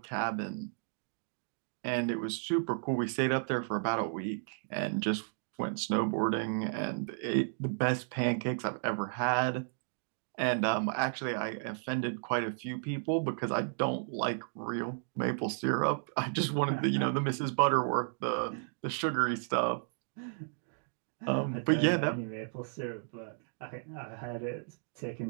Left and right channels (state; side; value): silent; left; digital silence